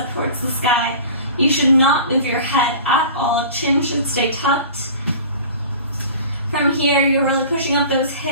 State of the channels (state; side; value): inverted; both; correlation -0.40